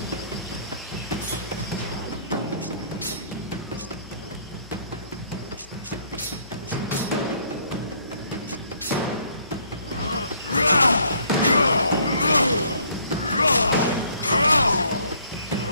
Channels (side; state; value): both; inverted; correlation -0.63